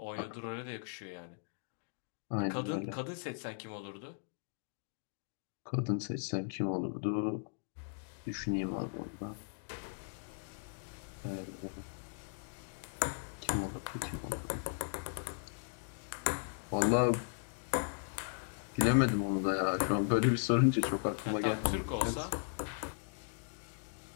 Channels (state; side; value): silent; right; digital silence